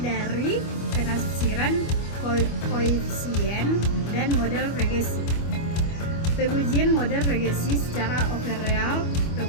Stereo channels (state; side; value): late; right; 25 ms